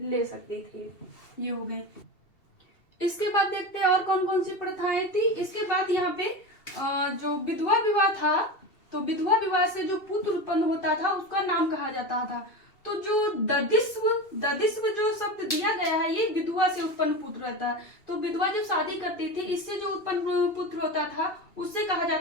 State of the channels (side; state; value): right; late; 2.7 ms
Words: ले सकती थी। ये हो गए। इसके बाद देखते हैं और कौन कौन सी प्रथाएं थी। इसके बाद यहाँ पे जो विधवा विवाह था, तो विधवा विवाह से जो पुत्र उत्पन्न होता था उसका नाम कहा जाता था। तो जो ददिस्व जो शब्द दिया गया है, ये विधवा से उत्पन्न पुत्र रहता है। तो विधवा जब शादी करती थी, इससे जो उत्पन्न पुत्र होता था उससे कहा